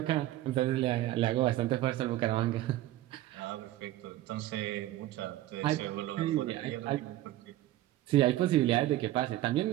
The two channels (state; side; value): quieter; left; 14.9 dB